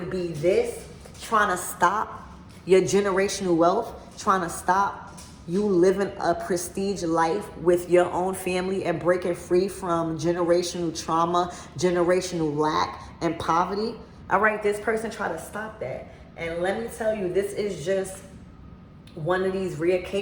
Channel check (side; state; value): both; identical; correlation 1.00